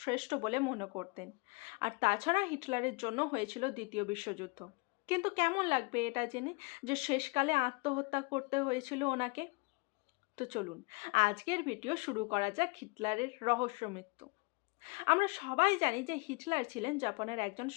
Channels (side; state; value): right; quieter; 28.0 dB